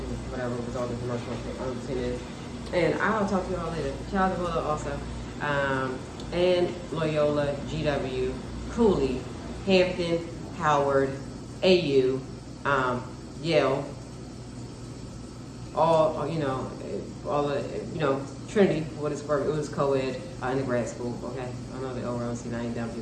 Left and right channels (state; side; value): identical; both; correlation 1.00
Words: whatever was all the commercial seen it. And I'll talk to y'all later. Shout out to Lola also. And Loyola, GW, Cooley, Hampton, Howard, AU, Yale, all, you know, all the, you know, Trinity, what is it was co-ed in the grad school, okay? I know the overall see 9 dumb